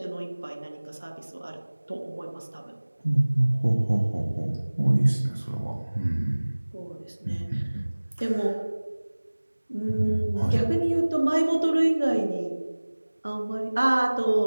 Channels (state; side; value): inverted; both; correlation -1.00